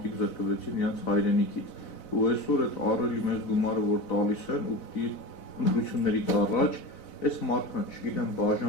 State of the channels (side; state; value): right; late; 4.0 ms